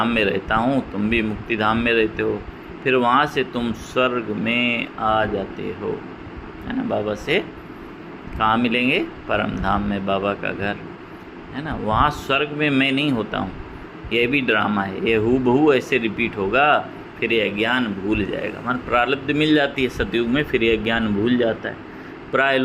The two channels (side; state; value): both; identical; correlation 1.00